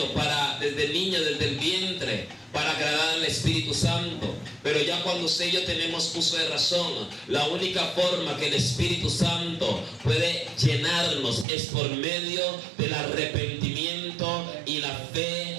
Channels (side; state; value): left; drops out; at 11.5 s